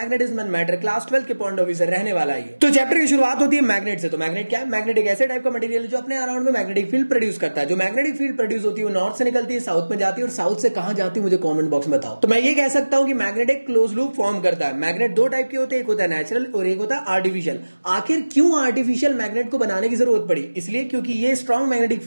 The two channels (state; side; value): inverted; both; correlation -1.00